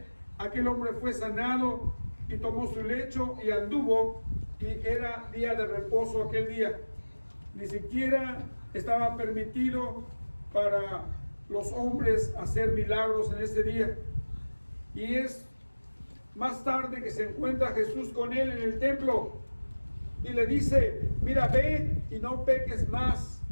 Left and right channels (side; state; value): both; inverted; correlation -1.00